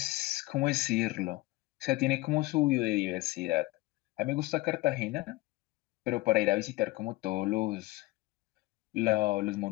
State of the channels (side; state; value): right; quieter; 20.1 dB